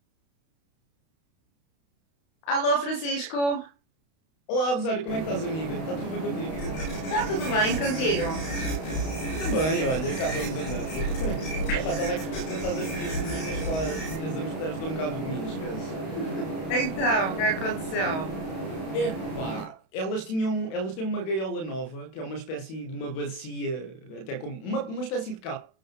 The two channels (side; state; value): right; late; 32 ms